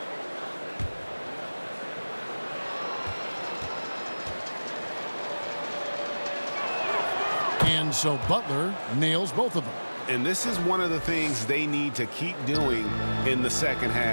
And so Butler nails both of them. And this is one of the things they need to keep doing in the second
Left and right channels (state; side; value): inverted; both; correlation -1.00